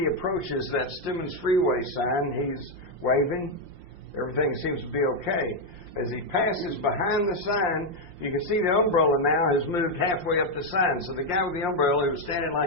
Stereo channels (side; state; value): left; late; 5.7 ms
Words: approaches that Stemmons Freeway sign, he's waving. Everything seems to be okay. As he passes behind the sign, you can see the umbrella now has moved halfway up the sign. So the guy with the umbrella who was standing